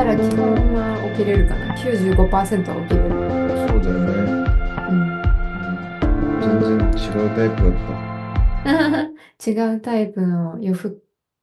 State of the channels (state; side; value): identical; both; correlation 1.00